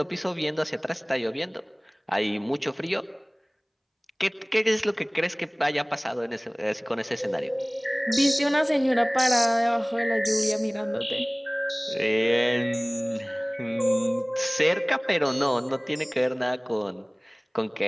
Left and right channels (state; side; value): identical; both; correlation 1.00